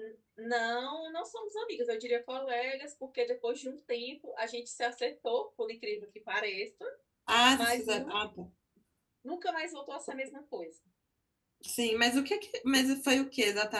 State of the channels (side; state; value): both; identical; correlation 1.00